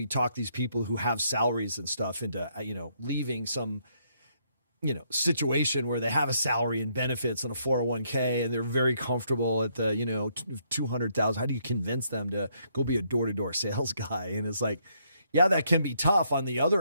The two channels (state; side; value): inverted; both; correlation -0.72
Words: talk these people who have salaries and stuff into, leaving some, situation where they have a salary and benefits and a 401k and they're very comfortable at the, 200,000. How do you convince them to go be a door-to-door sales guy? And it's like, yeah, that can be tough. On the other